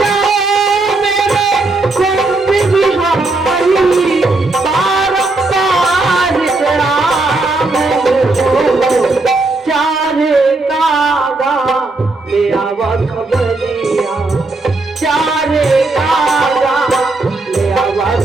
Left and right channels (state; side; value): quieter; left; 3.2 dB